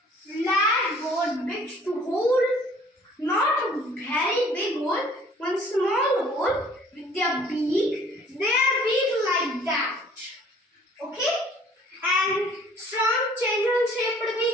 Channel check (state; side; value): normal; both; correlation 0.55